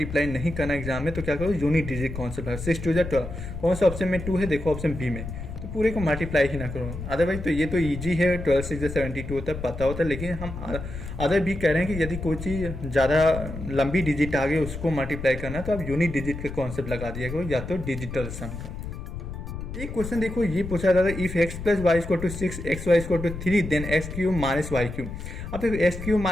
नहीं करना एग्जाम में, तो क्या करो, यूनिट डिजिट कॉन्सेप्ट है, 6 2 जा 12। कौन सा ऑप्शन में 2 है, देखो ऑप्शन बी में, तो पूरे को मल्टीप्लाई ही ना करो। अदरवाइज तो ये तो ईजी है, 12 6 जा 72 होता है, पता होता है। लेकिन हम अदर भी कह रहे हैं कि यदि कोई चीज़ ज़्यादा लंबी डिजिट आ गई उसको मल्टीप्लाई करना, तो आप यूनिट डिजिट का कॉन्सेप्ट लगा दिया करो, या तो डिजिटल सम का। एक क्वेश्चन देखो, ये पूछा जाता है, if x plus Y equal to 6, X Y equal to 3, then X cube minus Y cube. अब देखो X cube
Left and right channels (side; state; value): left; noise; rumble, 8 dB below the sound